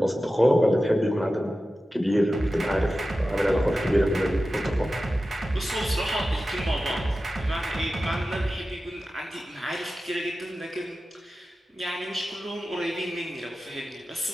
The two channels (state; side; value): normal; both; correlation 0.94